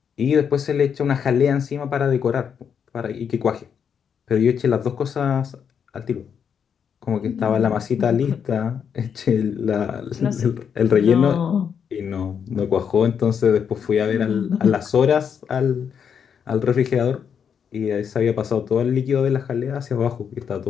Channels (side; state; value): right; quieter; 7.4 dB